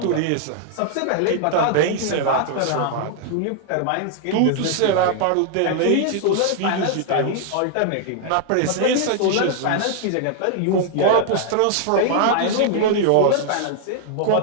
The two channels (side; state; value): both; different; correlation 0.00